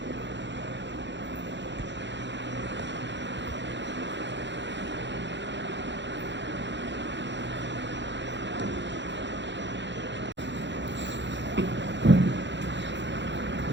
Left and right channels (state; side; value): late; left; 0.52 ms